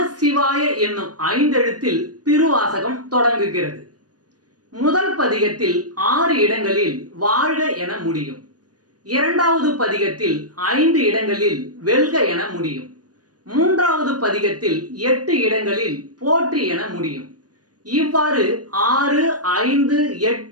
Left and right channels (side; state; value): left; late; 0.69 ms